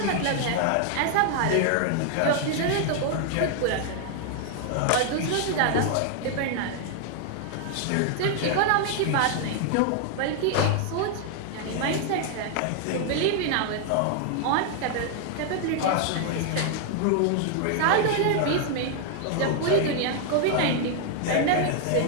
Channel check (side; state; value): both; different; correlation 0.00